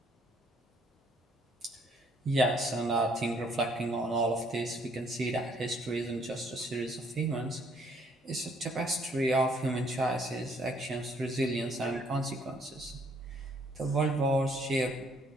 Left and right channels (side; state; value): both; normal; correlation 0.65